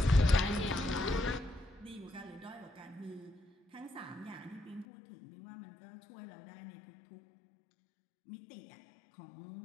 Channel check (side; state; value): right; drops out; at 4.9 s